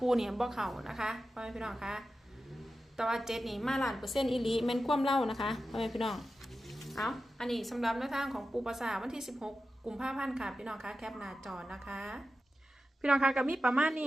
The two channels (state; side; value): normal; both; correlation 0.92